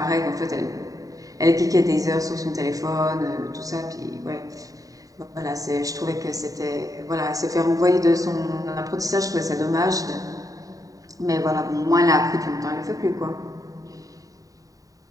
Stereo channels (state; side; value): late; left; 0.17 ms